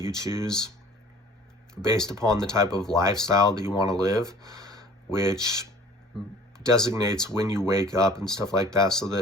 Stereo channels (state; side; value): normal; both; correlation 0.49